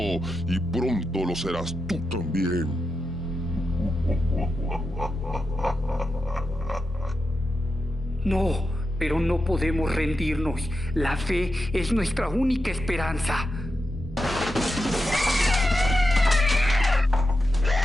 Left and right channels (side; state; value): left; noise; hum, 21 dB below the sound